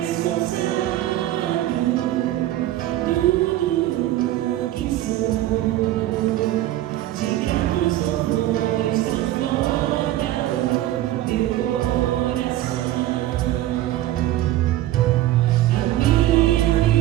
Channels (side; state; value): left; quieter; 14.4 dB